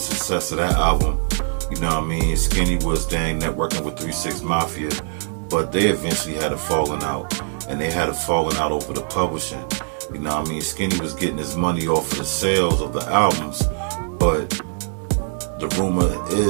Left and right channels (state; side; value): silent; left; digital silence